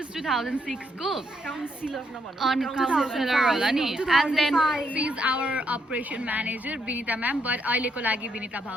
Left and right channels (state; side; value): normal; both; correlation 0.76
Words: 2006 को on counselor होला नि. And then she is our operation manager Binita ma'am, but अहिलेको लागि बिनिता